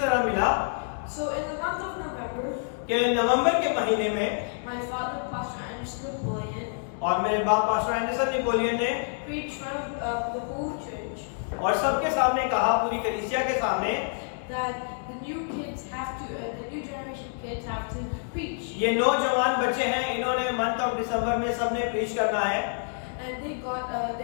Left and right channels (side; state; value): right; silent; digital silence